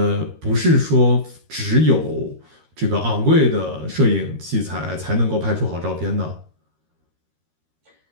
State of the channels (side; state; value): left; late; 13 ms